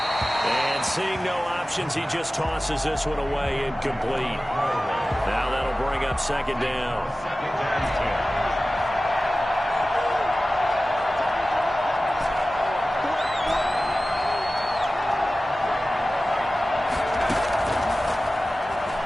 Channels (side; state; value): both; normal; correlation 0.96